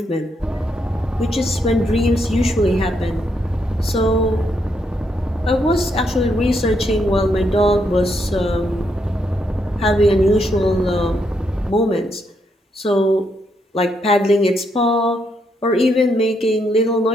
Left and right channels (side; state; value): both; normal; correlation 0.77